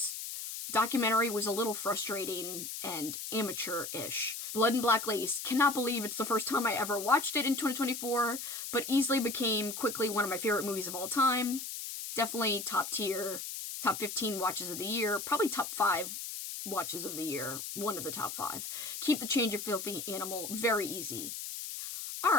documentary was a little frustrating and amateur-ish. Blood and Black Lace. Cannot believe it's the first time I ever watched it in 2024, but easily became quickly one of my favorite movies of all time. Definitely top tier, top 15 watches of the year, probably top 5 watches of the year, one of the top 5. Keep the Change, You Filthy Animal, very easy.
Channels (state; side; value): noise; left; hiss, 7 dB below the sound